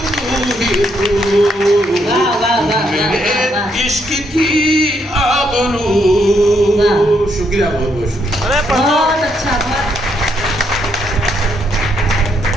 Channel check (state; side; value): normal; both; correlation 0.75